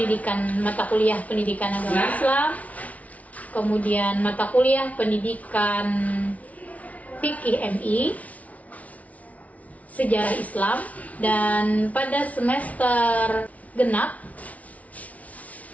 mata kuliah pendidikan agama Islam, kemudian mata kuliah pendidikan fikih MI, sejarah Islam, dan pada semester genap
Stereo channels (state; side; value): late; right; 0.069 ms